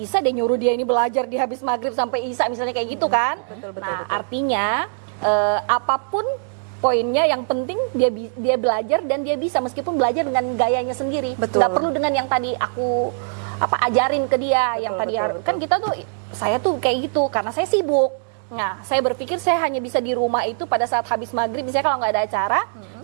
deh nyuruh dia ini belajar di habis maghrib sampai isya misalnya kayak gitu kan. Betul, Nah betul. artinya apapun poinnya yang penting dia belajar dan dia bisa meskipun belajar dengan gayanya sendiri. Betul. Nggak perlu dengan yang tadi aku ajarin ke dia yang tadi betul, kan kita tuh saya tuh kayak gitu karena saya sibuk. Nah, saya berpikir saya hanya bisa di rumah itu pada saat habis maghrib misalnya kalau nggak ada acara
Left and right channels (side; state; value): left; silent; digital silence